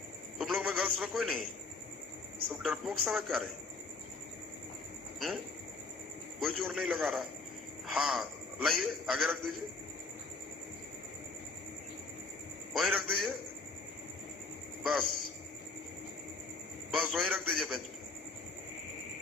तुम लोग में गर्ल्स में कोई नहीं, सब डरपोक सब है क्या रे? कोई जोर नहीं लगा रहा। हाँ लाइए, आगे रख दीजिए, वहीं रख दीजिए, बस बस वहीं रख दीजिए बेंच पे।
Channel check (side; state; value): right; quieter; 3.7 dB